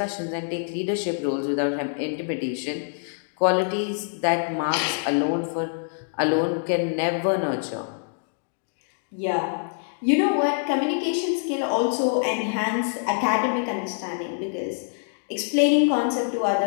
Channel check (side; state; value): right; silent; digital silence